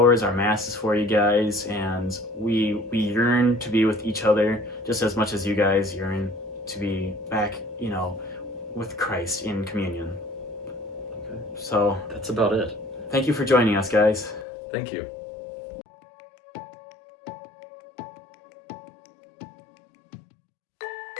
our masses for you guys, and we yearn to be with each other just as much as you guys yearn to be back, with Christ in communion. Okay. So that's about it. Thank you for joining us, guys. Thank you.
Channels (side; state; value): right; drops out; at 14.5 s